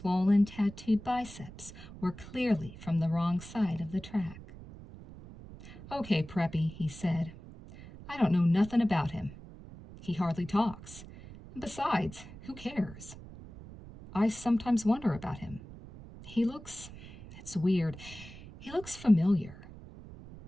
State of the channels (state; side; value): noise; right; rumble, 16 dB below the sound